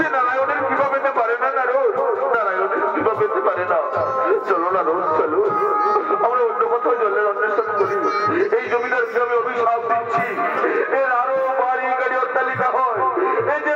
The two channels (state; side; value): identical; both; correlation 1.00